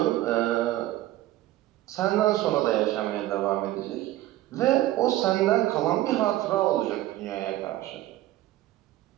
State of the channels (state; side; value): quieter; left; 15.4 dB